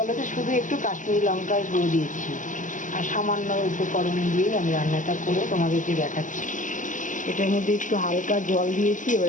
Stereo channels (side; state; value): right; late; 0.37 ms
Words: তো, শুধু একটু কাশ্মীরি লঙ্কার গুঁড়ো দিয়েছি আর সামান্য উপকরণ দিয়েই আমি রান্নাটা করে তোমাদেরকে দেখাচ্ছি। এটার মধ্যে একটু হালকা জল দিয়েছি, এবার